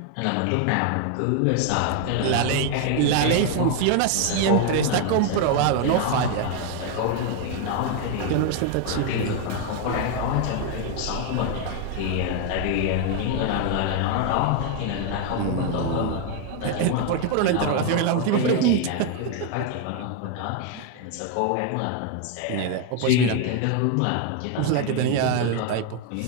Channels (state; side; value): different; both; correlation 0.01